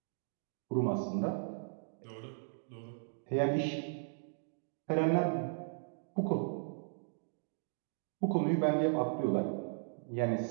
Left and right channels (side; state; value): left; silent; digital silence